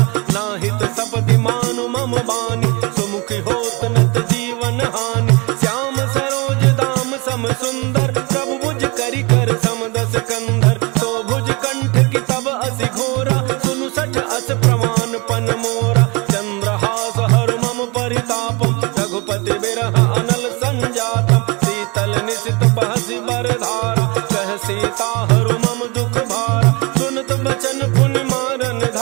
नाहित सपदि मानु मम बानी, सुमुखी होत नत जीवन हानि। श्याम सरोज दाम सम सुंदर, प्रभु भुज करि कर समदस कंधर। तो भुज कंठ की तब असि घोरा, सुनु सठ अस प्रमाण पन मोरा। चंद्रहास हर मम परितापम, रघुपति बिरह अनल संजातम। शीतल निशित बहसि बरधारा, कह सीता हरु मम दुख भारा। सुनत बचन पुनि मारन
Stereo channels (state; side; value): quieter; left; 27.3 dB